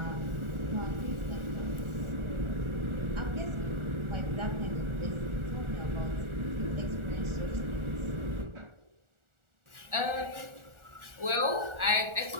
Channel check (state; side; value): late; left; 1.4 ms